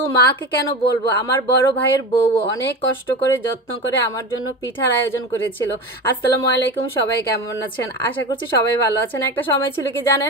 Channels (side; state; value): both; normal; correlation 0.26